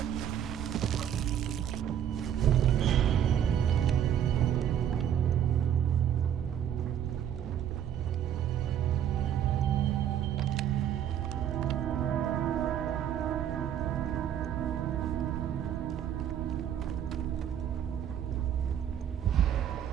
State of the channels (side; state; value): left; quieter; 9.7 dB